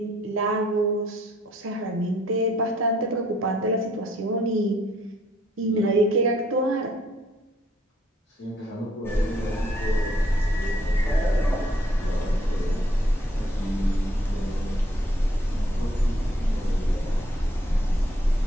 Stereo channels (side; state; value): both; normal; correlation 0.66